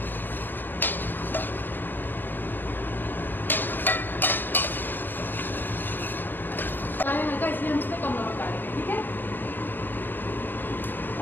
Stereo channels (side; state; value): right; late; 0.093 ms